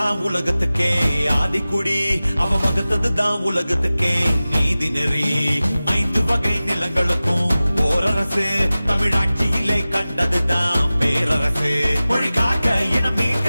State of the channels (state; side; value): inverted; both; correlation -0.97